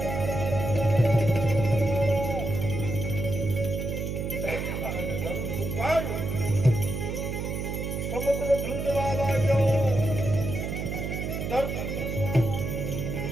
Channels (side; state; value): right; noise; hum, 3 dB below the sound